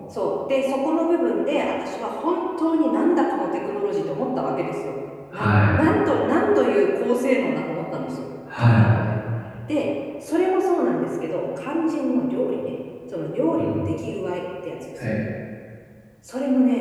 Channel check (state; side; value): identical; both; correlation 1.00